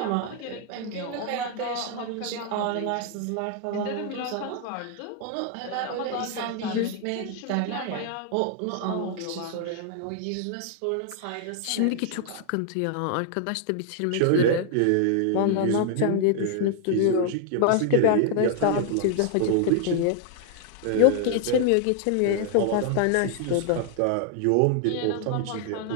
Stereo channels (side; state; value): both; different; correlation 0.00